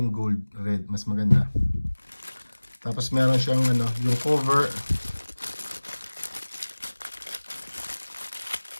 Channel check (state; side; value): inverted; both; correlation -1.00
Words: gold red, mas maganda. Tapos meron siyang yung cover.